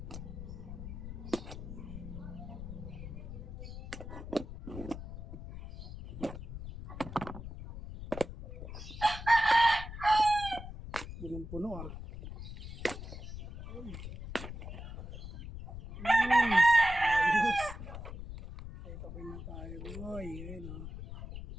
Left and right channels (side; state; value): left; noise; rumble, 9 dB below the sound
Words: Punong-puno ah. Ayos. Ay, tapin na tayo boy. Ayan o.